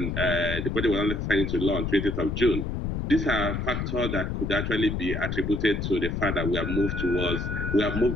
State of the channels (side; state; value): left; noise; rumble, 2 dB below the sound